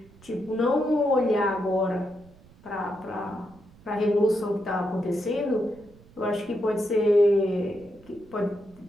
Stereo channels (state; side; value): noise; right; rumble, 25 dB below the sound